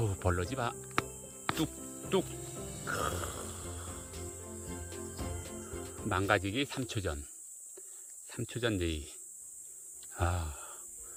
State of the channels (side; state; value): both; identical; correlation 1.00